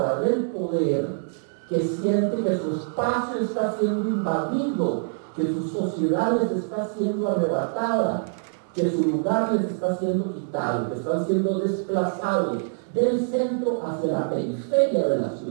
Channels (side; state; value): left; silent; digital silence